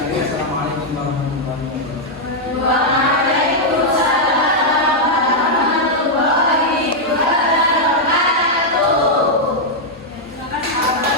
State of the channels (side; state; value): both; normal; correlation -0.03